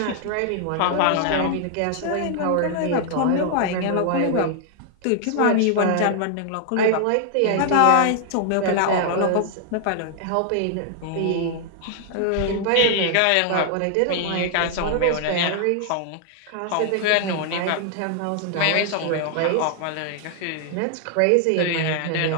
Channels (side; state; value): both; different; correlation 0.00